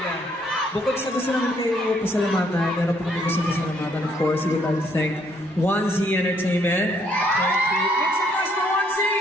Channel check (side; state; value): both; normal; correlation 0.68